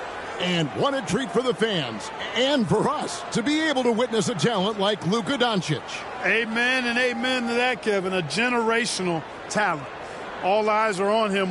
And what a treat for the fans and for us to be able to witness a talent like Luka Doncic. Amen and amen to that, Kevin. A generational talent. All eyes are on him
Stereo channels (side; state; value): both; identical; correlation 1.00